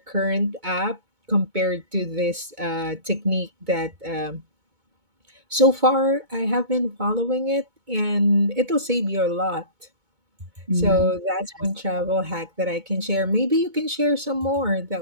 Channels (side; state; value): left; late; 2.2 ms